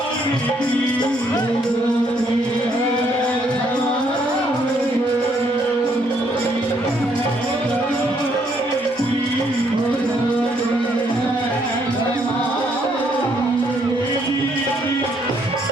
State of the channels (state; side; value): normal; both; correlation 0.70